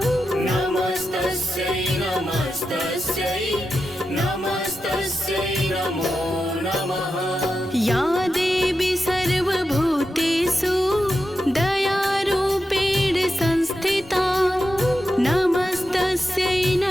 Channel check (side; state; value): both; normal; correlation 0.89